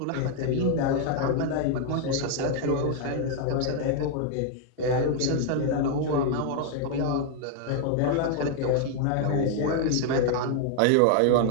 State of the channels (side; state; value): both; different; correlation 0.00